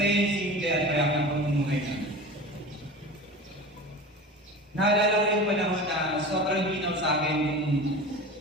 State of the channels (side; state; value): both; normal; correlation 0.33